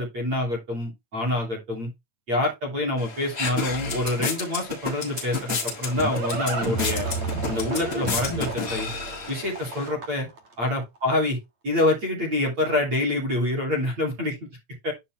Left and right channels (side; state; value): left; late; 8.7 ms